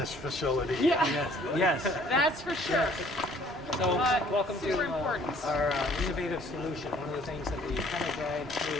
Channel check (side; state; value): both; normal; correlation 0.58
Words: facility. Yeah, Yes. that's for sure. So welcome Super to important. our innovative solution. One of the things that we kind of drive